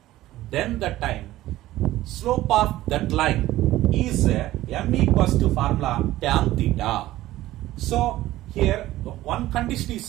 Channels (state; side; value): quieter; left; 15.6 dB